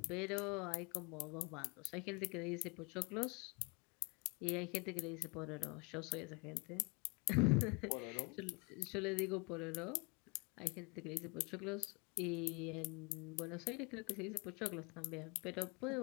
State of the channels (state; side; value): quieter; right; 30.8 dB